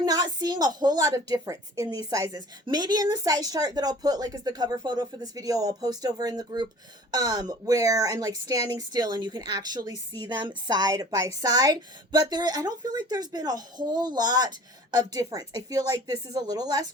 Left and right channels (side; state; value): both; normal; correlation 0.46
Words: not seeing a whole lot of difference in these sizes. Maybe in the size chart that I'll put like as the cover photo for this video, I'll post over in the group where I'm like standing still and you can actually see them side by side. But I don't feel like there's been a whole lot of difference. I feel like this is a little less